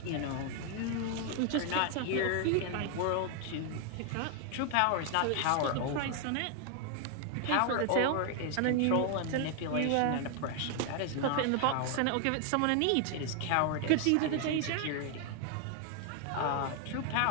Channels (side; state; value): both; different; correlation 0.00